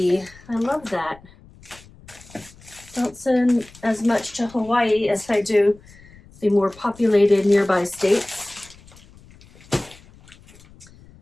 I love that. Don't send as much to Hawaii as I do the more populated nearby states.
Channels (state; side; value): noise; left; rumble, 24 dB below the sound